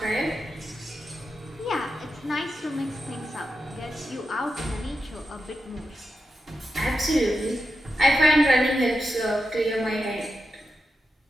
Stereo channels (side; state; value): both; normal; correlation 0.88